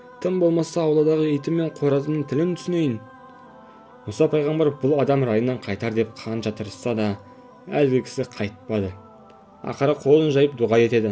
тым болмаса ауладағы итім мен қоразымның тілін түсінейін." Мұса пайғамбар бұл адам райынан қайтар деп қанша тырысса да, әлгі кісі қайтпады. Ақыры қолын жайып дұға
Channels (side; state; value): both; identical; correlation 1.00